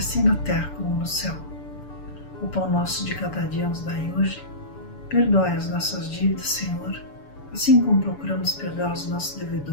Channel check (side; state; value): right; late; 6.9 ms